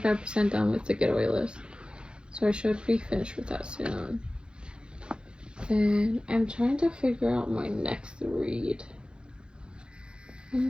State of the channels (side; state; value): left; late; 0.051 ms